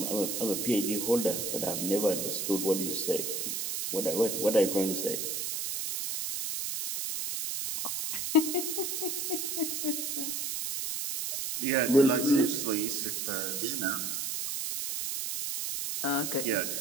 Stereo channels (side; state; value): right; noise; hiss, 2 dB below the sound